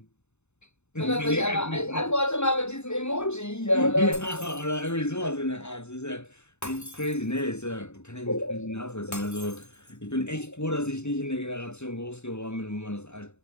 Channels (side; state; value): right; late; 0.82 ms